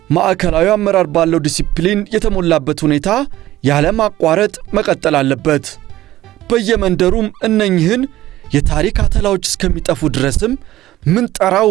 ማዕከላዊ አመራር ባለው ዲሲፕሊን የተሞላበት ሁኔታ ያለማቋረጥ መቀጠል አለበት። በየመንደሩም እነኝህን የታሪክ አተላዎች እስከሚጠፉ ድረስም ምንጠራው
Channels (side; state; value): left; quieter; 15.1 dB